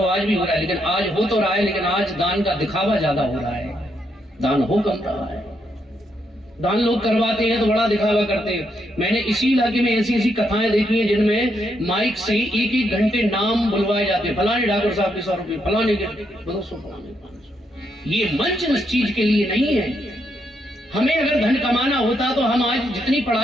आज भी हो रहा है, लेकिन आज हो तो रहा है, लेकिन आज दान का दिखावा ज्यादा हो रहा है, दान हो कम रहा है। दान लोग करवाते हैं तो बड़ा दिखावा करते हैं। मैंने इसी इलाके में ऐसी ऐसी कथाएं देखी हैं जिनमें माइक से एक एक घंटे नाम बुलवाए जाते हैं, फलाने ठाकुर साहब के 100 रुपये, फलाने के 200, फलाने 500। ये मंच इस चीज के लिए नहीं है। हमें अगर धन कमाना होता तो हम आज जितनी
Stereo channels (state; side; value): normal; both; correlation 0.78